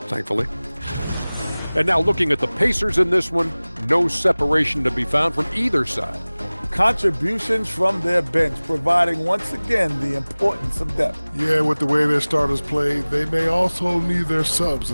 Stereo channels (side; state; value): both; inverted; correlation -1.00